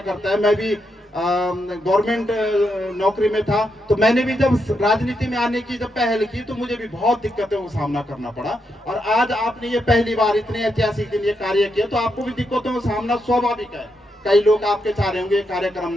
करता है। मैं भी गवर्नमेंट नौकरी में था, तो मैंने भी जब राजनीति में आने की जब पहल की तो मुझे भी बहुत दिक्कतों का सामना करना पड़ा। और आज आपने ये पहली बार इतने ऐतिहासिक दिन ये कार्य किया तो आपको भी दिक्कतों का सामना स्वाभाविक है। कई लोग आपके चाह रहे होंगे कार्यक्रम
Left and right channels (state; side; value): normal; both; correlation 0.82